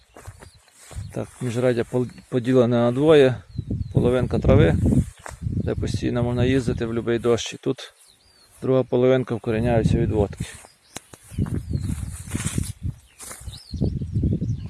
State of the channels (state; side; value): identical; both; correlation 1.00